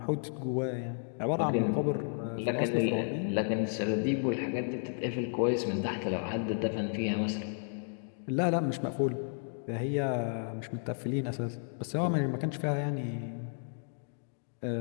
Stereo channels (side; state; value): right; silent; digital silence